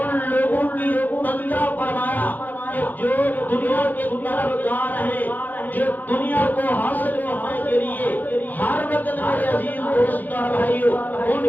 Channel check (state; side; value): late; right; 0.084 ms